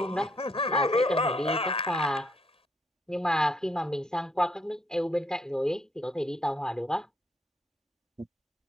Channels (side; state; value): both; normal; correlation 0.72